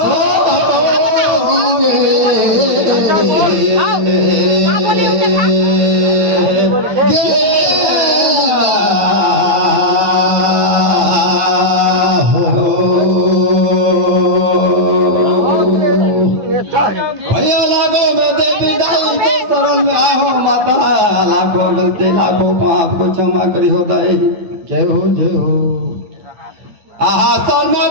लाखों गलती लाखों पाप को क्षमा करी होता है। जय हो आहा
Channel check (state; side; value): late; left; 9.4 ms